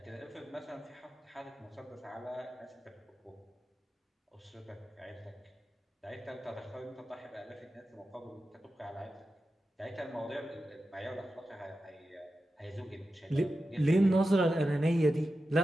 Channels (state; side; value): normal; both; correlation 0.92